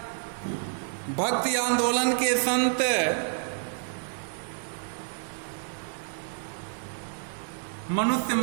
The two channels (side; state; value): left; silent; digital silence